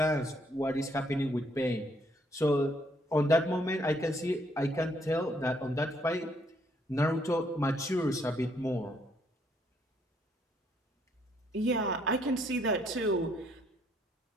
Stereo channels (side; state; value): both; normal; correlation 0.69